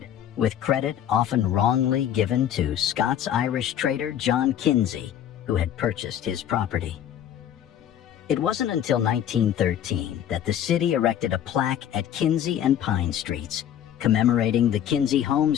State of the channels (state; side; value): quieter; right; 10.3 dB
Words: with credit often wrongly given to Scots-Irish trader John Kinsey, who had purchased his property. It wasn't until 1913 that the city erected a plaque at Kinsey and Pine Streets, commemorating the Kinsey